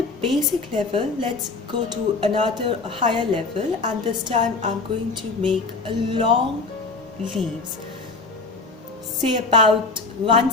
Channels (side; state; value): right; quieter; 3.9 dB